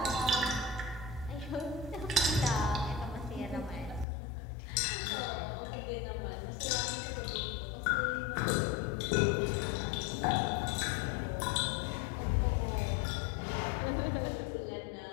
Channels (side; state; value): right; drops out; at 4.0 s